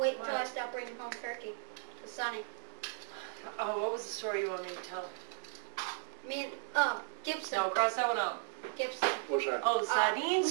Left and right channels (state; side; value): silent; left; digital silence